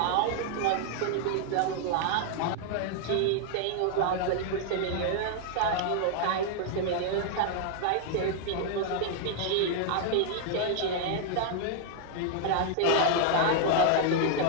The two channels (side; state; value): both; different; correlation 0.00